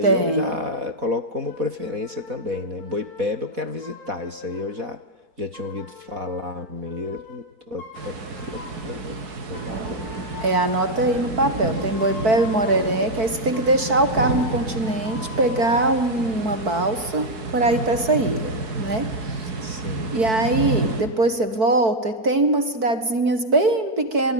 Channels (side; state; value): left; late; 4.5 ms